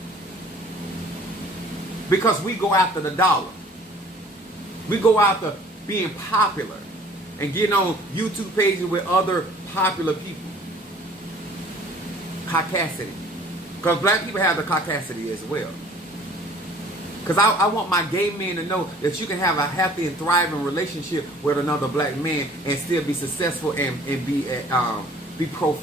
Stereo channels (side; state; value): both; normal; correlation 0.52